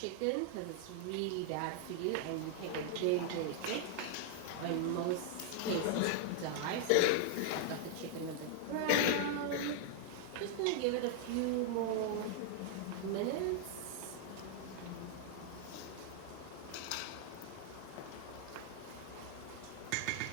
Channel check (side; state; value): both; different; correlation 0.00